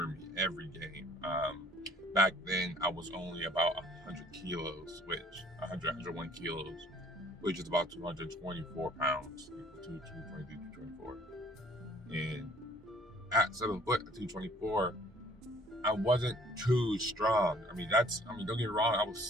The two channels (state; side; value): normal; both; correlation 0.57